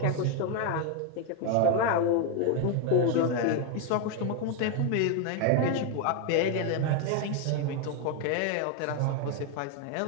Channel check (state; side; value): different; both; correlation 0.00